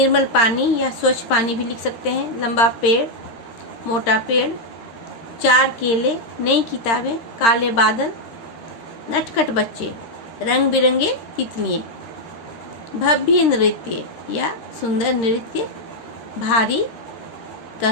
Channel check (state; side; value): late; right; 13 ms